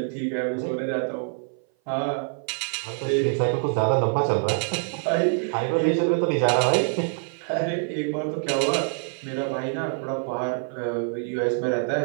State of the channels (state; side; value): silent; left; 57 dB below the other